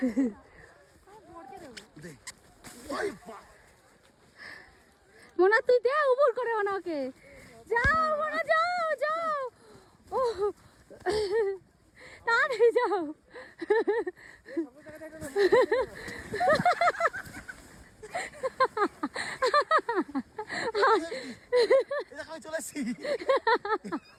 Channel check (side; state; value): both; identical; correlation 1.00